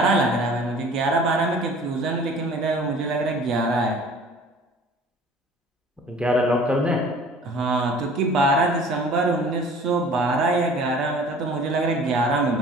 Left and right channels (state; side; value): normal; both; correlation 0.48